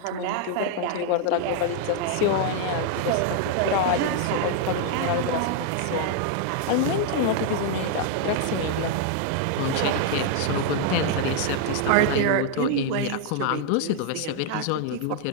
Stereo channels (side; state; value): both; different; correlation 0.00